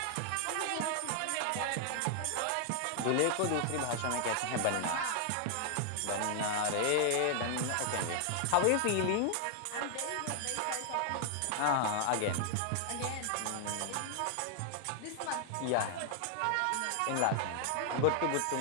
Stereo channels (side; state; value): both; different; correlation 0.00